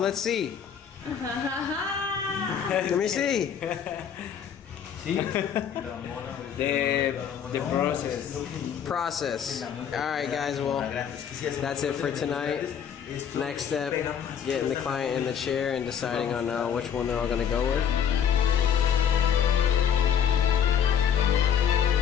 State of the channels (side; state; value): right; quieter; 8.3 dB